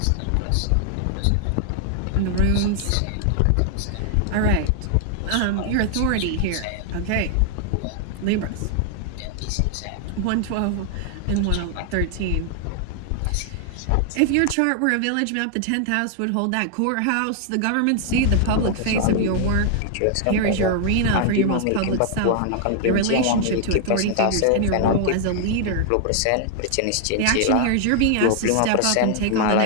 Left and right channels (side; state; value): both; different; correlation 0.00